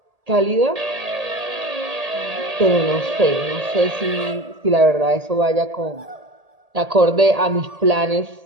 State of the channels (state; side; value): late; left; 1.8 ms